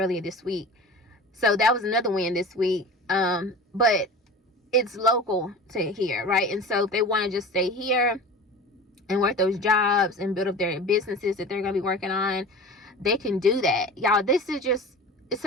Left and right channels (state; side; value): normal; both; correlation 0.35